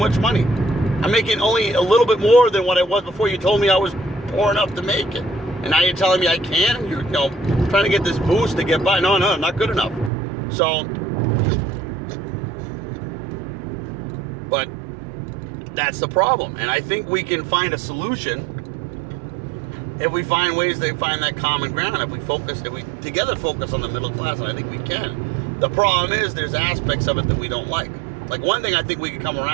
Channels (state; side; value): drops out; left; at 10.1 s